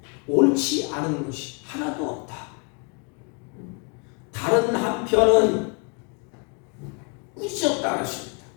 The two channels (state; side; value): quieter; right; 34.4 dB